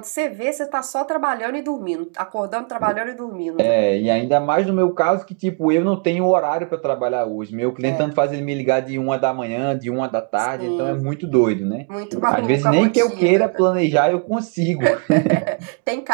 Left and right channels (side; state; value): left; quieter; 36.2 dB